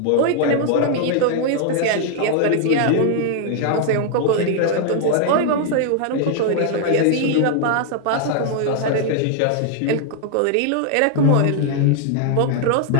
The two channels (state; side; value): different; both; correlation 0.00